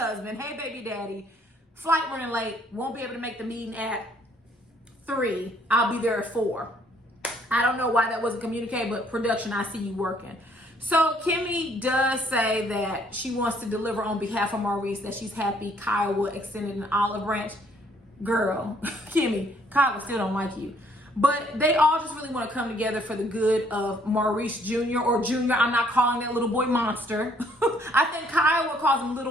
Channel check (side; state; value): both; normal; correlation 0.64